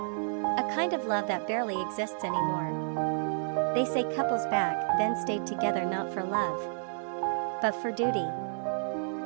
A kind of love that barely exists anymore. They say couples back then stayed together not for love, but for duty.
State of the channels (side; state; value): left; silent; 58 dB below the other